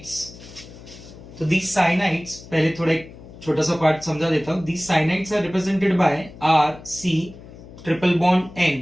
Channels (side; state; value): left; noise; hum, 18 dB below the sound